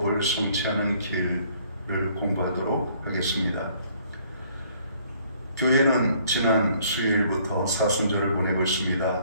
성취하는 길을 공부하도록 하겠습니다. 교회는 지난 수요일부터 사순절을 보내고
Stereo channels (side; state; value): both; inverted; correlation -0.62